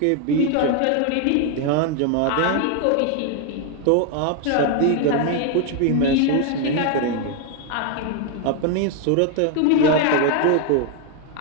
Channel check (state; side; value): different; both; correlation 0.01